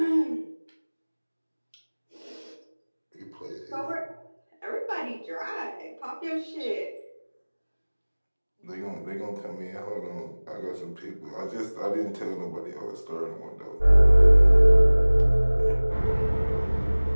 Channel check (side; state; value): both; inverted; correlation -1.00